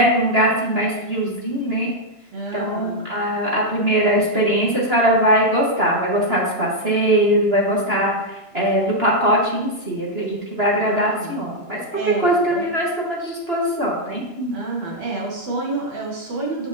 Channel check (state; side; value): late; left; 2.9 ms